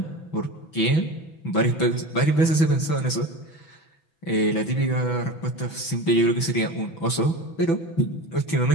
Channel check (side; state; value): right; late; 6.0 ms